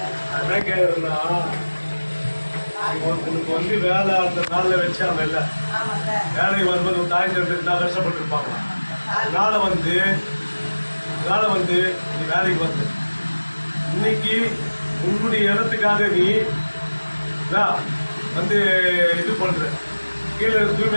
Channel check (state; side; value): inverted; both; correlation -1.00